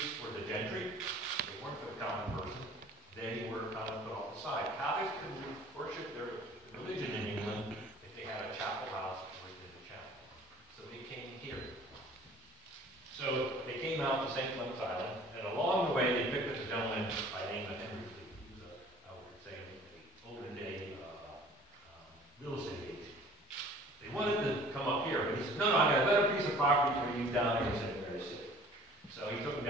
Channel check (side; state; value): both; normal; correlation 0.49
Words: for the gentry. They weren't for the common person. They were kind of put off the side. Catholics couldn't worship their religion in England if they had a chapel house or they did a chapel. So they came here. So they came out to St. Clement's Island, and along the way they picked up a gentleman by the name of Henry Fleet. He was I would say, an olden day real estate agent. They wanted to come up here, but he said, no, I got a better piece of property for you down there in St. Mary's City. So he took them